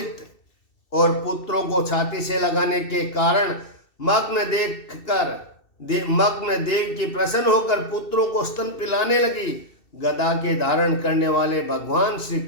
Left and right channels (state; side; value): late; right; 2.7 ms